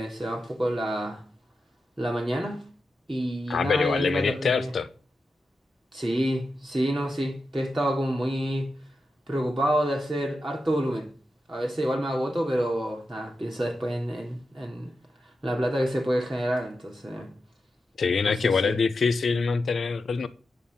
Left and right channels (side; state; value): both; normal; correlation 0.90